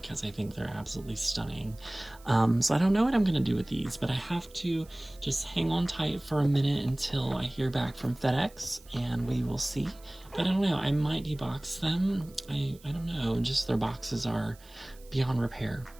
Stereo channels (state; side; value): noise; right; hiss, 25 dB below the sound